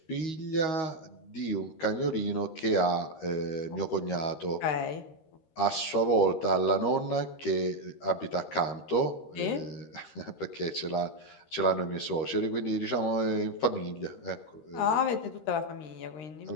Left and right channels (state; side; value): late; right; 13 ms